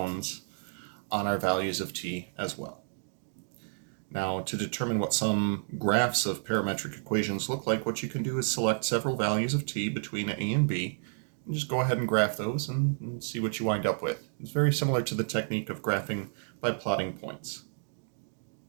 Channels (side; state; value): left; silent; digital silence